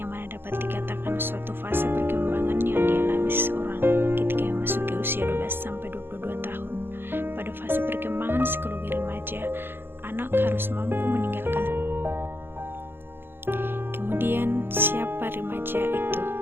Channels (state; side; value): late; left; 0.10 ms